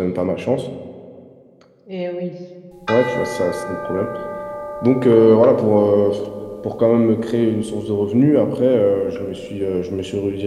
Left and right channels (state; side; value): identical; both; correlation 1.00